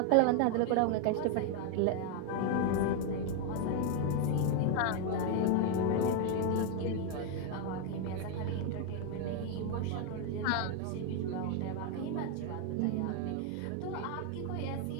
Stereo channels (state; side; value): different; both; correlation 0.01